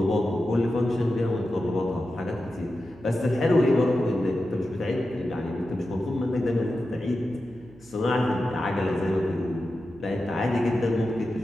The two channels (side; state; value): right; noise; hum, 24 dB below the sound